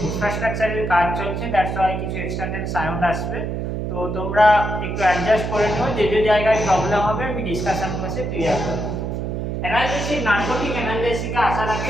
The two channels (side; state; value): right; noise; hum, 3 dB below the sound